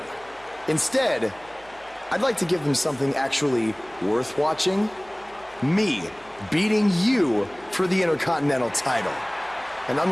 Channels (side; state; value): right; noise; hum, 26 dB below the sound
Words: Instead, I'd like to give them something actually worth watching. Me beating you for the Intercontinental title. And